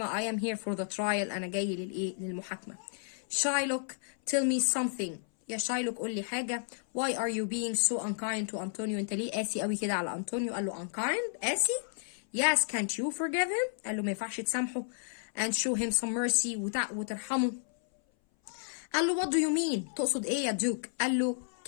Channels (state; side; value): silent; right; 56 dB below the other